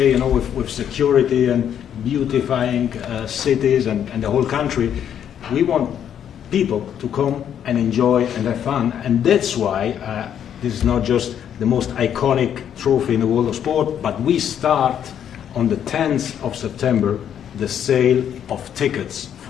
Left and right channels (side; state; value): right; quieter; 9.3 dB